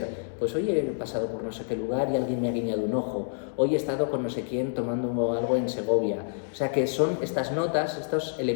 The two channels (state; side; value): silent; right; digital silence